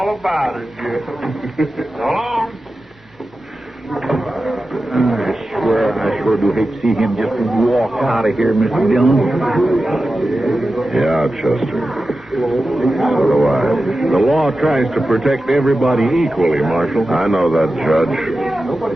about it, Jim. So long. I sure do hate to see him just walk out of here, Mr. Dillon. Yeah, Chester. So do I. The law tries to protect everybody equally, Marshal. I know that, Judge.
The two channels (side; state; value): both; normal; correlation 0.93